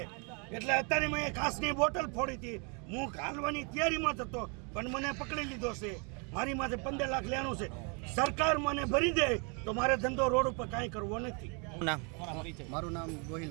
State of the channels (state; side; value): quieter; left; 35.3 dB